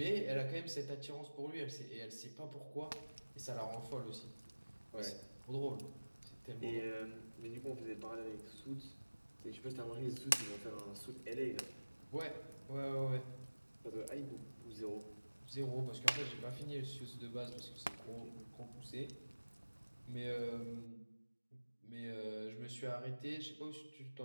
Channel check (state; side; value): inverted; both; correlation -1.00